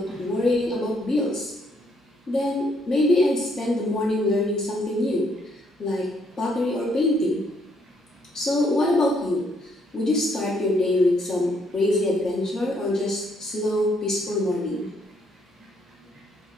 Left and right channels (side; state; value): both; normal; correlation 0.71